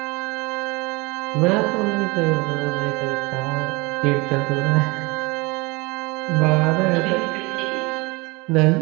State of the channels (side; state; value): left; quieter; 25.4 dB